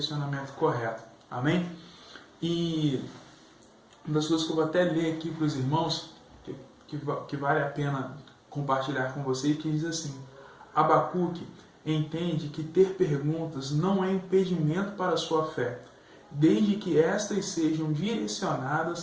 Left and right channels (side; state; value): both; identical; correlation 1.00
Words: correto. Amém? E uma das coisas que eu vou até ler aqui para os irmãos, que vale a pena compartilhar com vocês, que diz assim: Abacuque entende que ter perguntas não é impedimento para a sua fé, desde que estas sejam